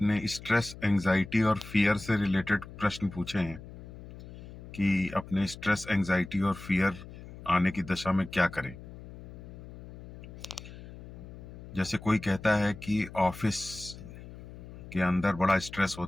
स्ट्रेस, एंजाइटी और फियर से रिलेटेड प्रश्न पूछे हैं कि अपने स्ट्रेस, एंजाइटी और फियर आने की दशा में क्या करें। जैसे कोई कहता है कि ऑफिस के अंदर बड़ा स्ट्रेस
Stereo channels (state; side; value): noise; left; hum, 15 dB below the sound